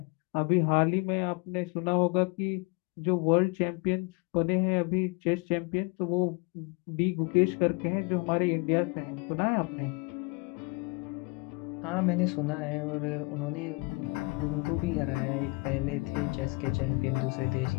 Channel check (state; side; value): quieter; right; 28.6 dB